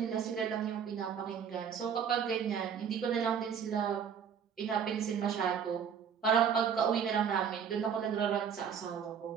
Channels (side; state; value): left; quieter; 7.5 dB